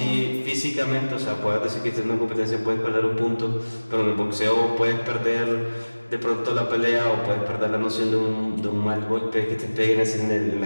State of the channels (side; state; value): both; inverted; correlation -1.00